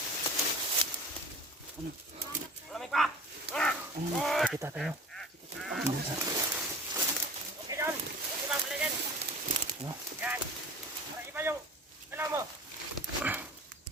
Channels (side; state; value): both; normal; correlation 0.38